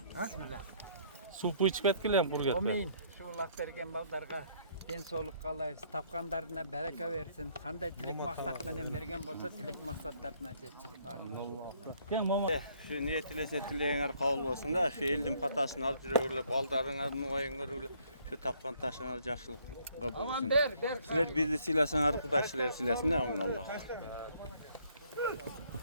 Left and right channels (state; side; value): inverted; both; correlation -0.65